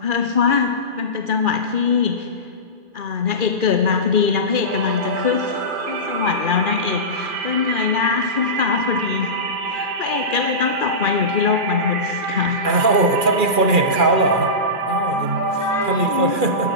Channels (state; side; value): late; left; 2.4 ms